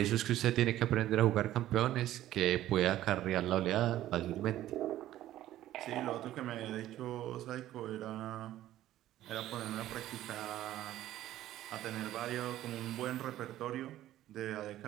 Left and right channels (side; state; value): left; quieter; 13.7 dB